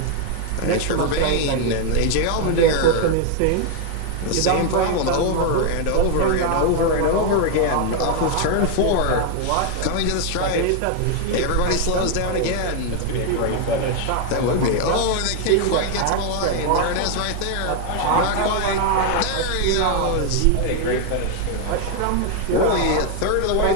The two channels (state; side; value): different; both; correlation 0.00